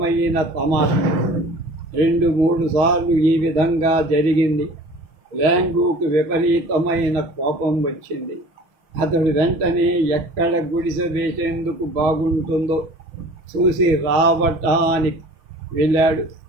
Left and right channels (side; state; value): left; late; 6.0 ms